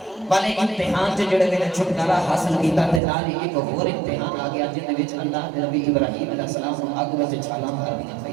والے امتحان تے جڑے بلے چھٹکارا حاصل کیتا تے نال ہی ایک اور امتحان آ گیا جن وچ اللہ نے نبی ابراہیم علیہ السلام کو اگ وچ چھالاں مار دیا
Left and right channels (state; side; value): drops out; left; at 3.0 s